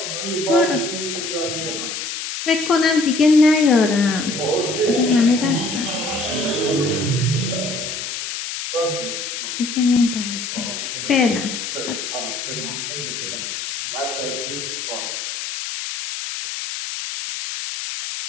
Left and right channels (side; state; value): left; noise; hiss, 5 dB below the sound